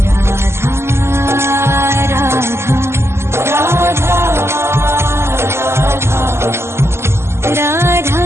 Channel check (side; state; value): left; late; 0.12 ms